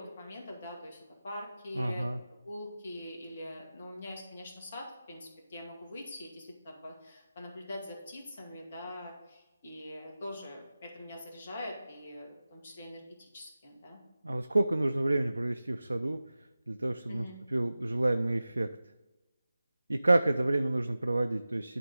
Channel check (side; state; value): both; inverted; correlation -0.96